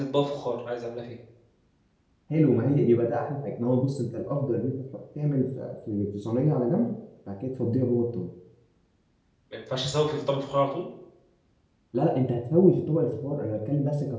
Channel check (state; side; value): identical; both; correlation 1.00